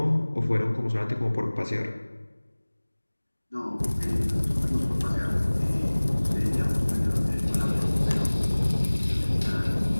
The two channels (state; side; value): inverted; both; correlation -1.00